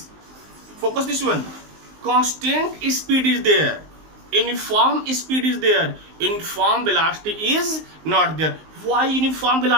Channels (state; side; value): late; left; 19 ms